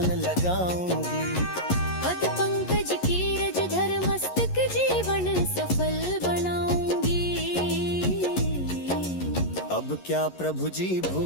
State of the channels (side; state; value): right; late; 11 ms